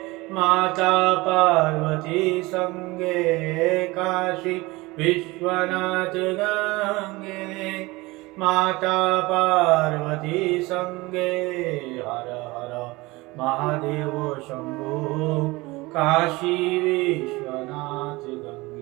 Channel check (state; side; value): quieter; left; 22.1 dB